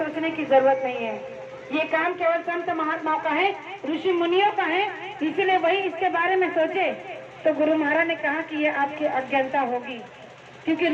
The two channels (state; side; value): identical; both; correlation 1.00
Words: की जरूरत नहीं है। ये काम केवल संत महात्माओं का है, ऋषि मुनियों का है, इसलिए वही इसके बारे में सोचे। तो गुरु महाराज ने कहा कि ये आपकी अज्ञानता होगी, क्योंकि